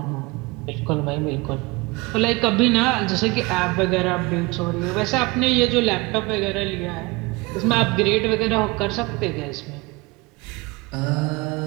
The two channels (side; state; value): left; quieter; 24.3 dB